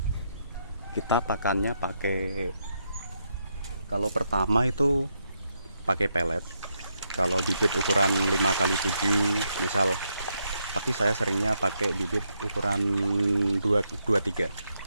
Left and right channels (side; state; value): both; inverted; correlation -0.79